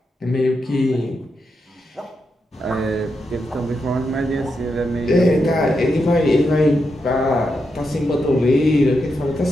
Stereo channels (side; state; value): both; normal; correlation 0.85